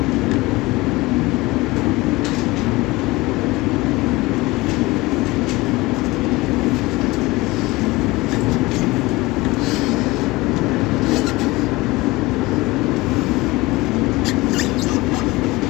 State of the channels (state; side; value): quieter; right; 21.3 dB